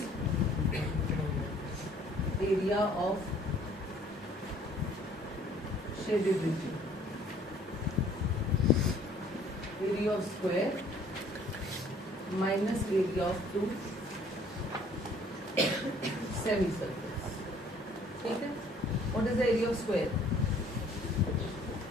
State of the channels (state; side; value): normal; both; correlation 0.57